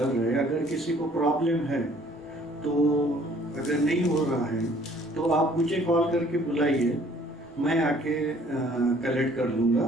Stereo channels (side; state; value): both; normal; correlation 0.57